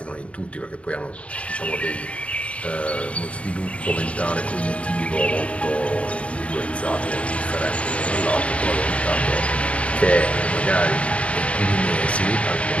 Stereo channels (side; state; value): right; late; 0.063 ms